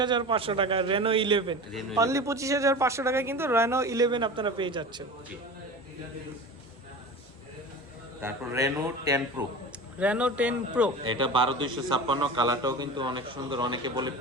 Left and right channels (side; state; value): both; normal; correlation 0.32